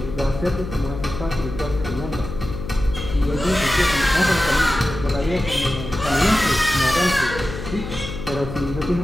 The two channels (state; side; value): noise; left; hum, 8 dB below the sound